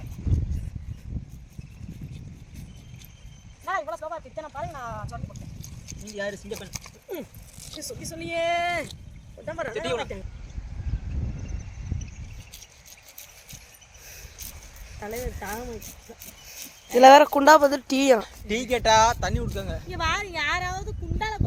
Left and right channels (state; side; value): identical; both; correlation 1.00